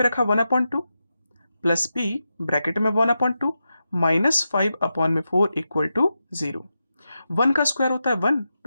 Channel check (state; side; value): inverted; both; correlation -0.89